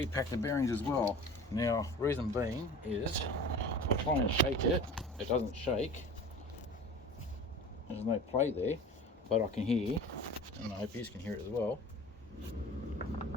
the bearings as well. Now, reason being is I try and shake it. It doesn't shake. There's no play there, but I can hear, and I hope you can hear it as well.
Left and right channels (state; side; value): normal; both; correlation 0.39